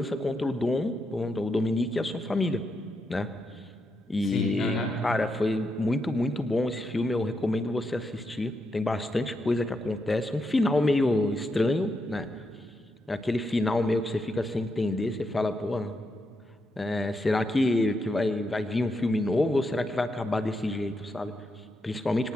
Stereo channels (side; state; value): both; normal; correlation 0.82